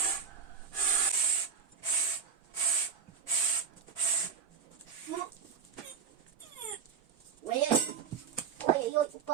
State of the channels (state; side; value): quieter; left; 6.7 dB